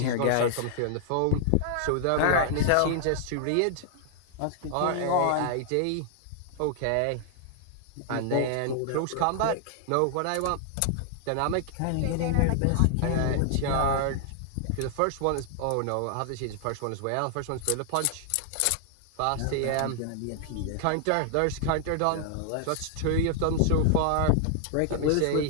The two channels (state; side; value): different; both; correlation -0.01